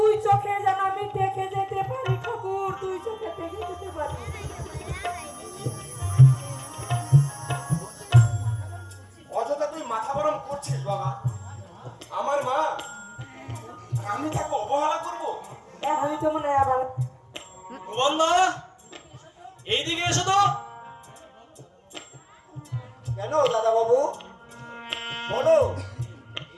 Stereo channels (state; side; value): identical; both; correlation 1.00